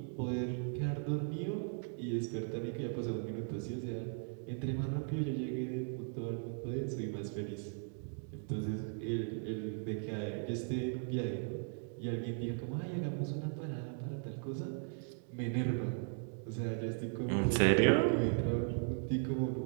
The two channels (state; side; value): silent; left; 53 dB below the other